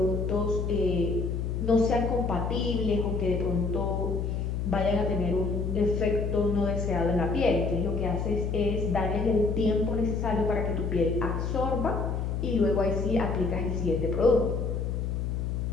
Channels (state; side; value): noise; left; hum, 1 dB below the sound